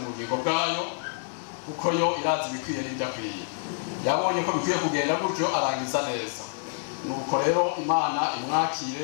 bugingo bwayo kuko yo irazi bikwiye n'ibidakwiye yabonye ko bikwiye kugenda gutyo arangiza neza nuko rero Imana imwakire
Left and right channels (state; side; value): silent; right; digital silence